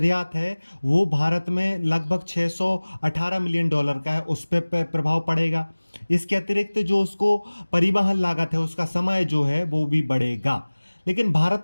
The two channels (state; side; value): inverted; both; correlation -1.00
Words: है, वो भारत में लगभग 618 मिलियन डॉलर का है, उस पर प्रभाव पड़ेगा। इसके अतिरिक्त जो उसको परिवहन लागत है, उसका समय जो है वो भी बढ़ेगा। लेकिन